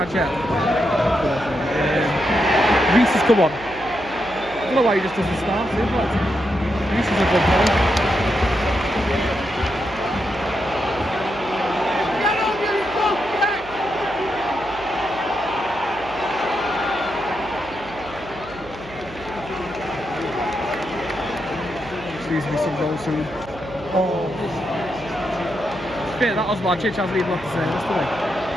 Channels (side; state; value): right; noise; hum, 18 dB below the sound